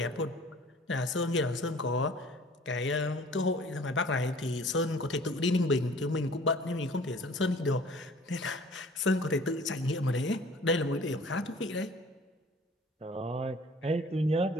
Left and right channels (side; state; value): both; normal; correlation 0.50